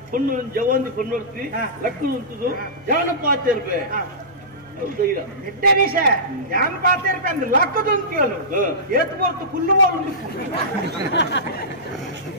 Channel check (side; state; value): left; noise; hum, 29 dB below the sound